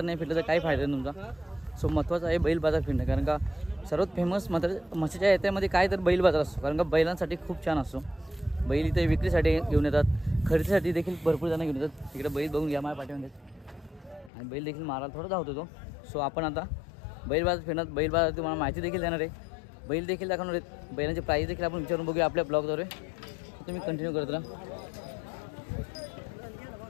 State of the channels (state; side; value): drops out; right; at 14.3 s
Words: नाही फिरलं तर काही फायदा नाही तुमचा. सो महत्त्वाचं आहे बैल बाजार फिरणं. कारण का सर्वात फेमस मात्र मत्स्याच्या यात्रेमध्ये काय तर बैल बाजार असतो. कारण का बैलांसाठी खूप छान असतो. बैल इथे विक्रीसाठी घेऊन येतात, खरेदीसाठी देखील भरपूर जण घेऊन येतात. इकडे बैल बघून घ्या माझ्या पाठीमध्ये. आणि बैल देखील मारायला थोडा धावतो तो. सो आपण आता बैल बाजार फिरणार. बैल बाजार तुम्हाला माहिती देखील देणार आहे. बैल देखील दाखवणार आहेत, बैलांचे प्राईस देखील आपण विचारून बघूया आपल्या ब्लॉगद्वारे. तुम्ही कंटिन्यू करत राहा.